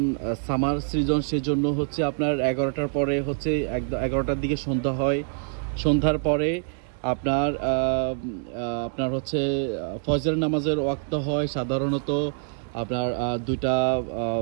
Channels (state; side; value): silent; left; digital silence